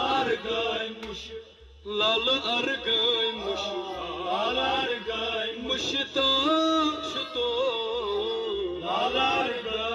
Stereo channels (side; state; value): both; identical; correlation 1.00